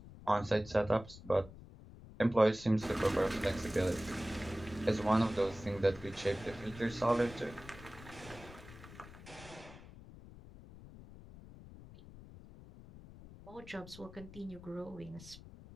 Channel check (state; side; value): noise; left; rumble, 17 dB below the sound